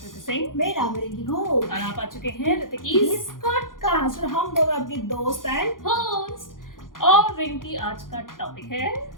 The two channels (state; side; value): late; right; 0.90 ms